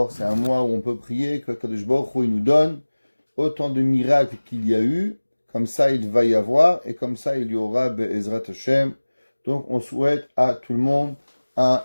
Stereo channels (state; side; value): inverted; both; correlation -1.00